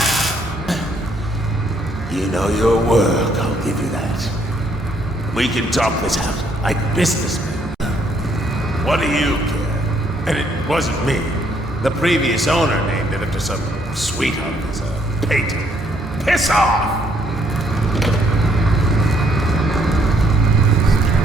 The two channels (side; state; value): both; normal; correlation 0.69